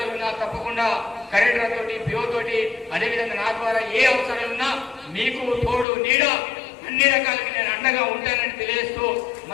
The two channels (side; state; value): right; drops out; at 5.9 s